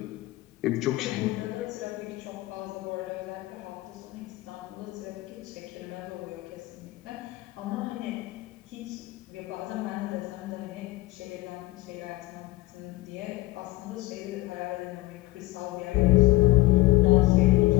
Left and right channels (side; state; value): right; quieter; 19.5 dB